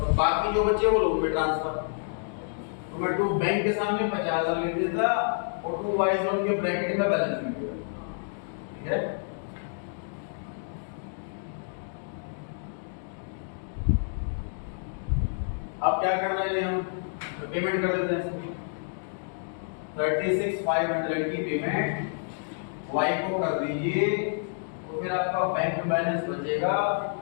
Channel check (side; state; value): right; silent; digital silence